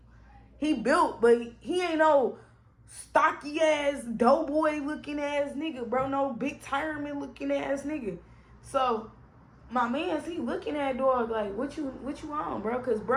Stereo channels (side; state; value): both; identical; correlation 1.00